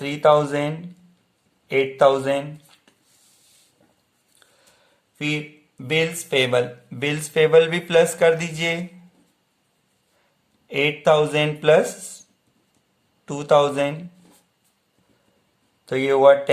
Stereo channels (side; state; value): both; identical; correlation 1.00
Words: 8000। फिर बिल्स पेबल, बिल्स पेबल भी प्लस कर दीजिए 8000 प्लस 2000, तो ये हुआ